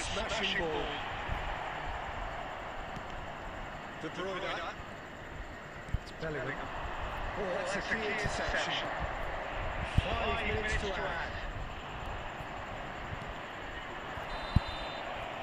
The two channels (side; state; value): both; identical; correlation 1.00